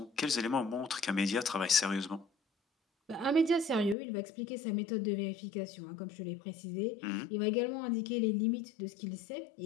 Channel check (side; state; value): right; drops out; at 4.0 s